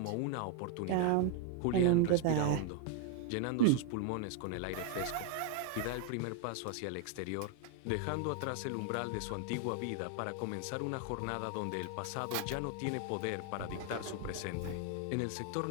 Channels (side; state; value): both; different; correlation 0.00